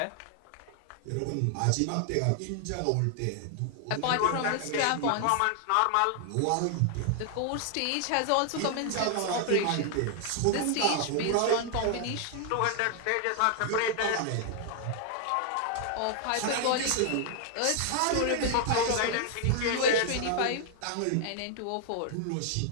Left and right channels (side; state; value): both; different; correlation 0.00